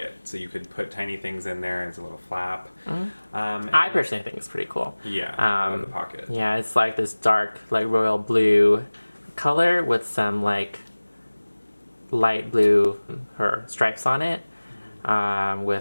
So you could put tiny things in there. And it's a little flap. I personally think it's pretty cool. Yeah, I love the pocket. Yeah, it's like this dark, like royal blue color with some like light blue stripes on it,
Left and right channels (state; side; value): inverted; both; correlation -1.00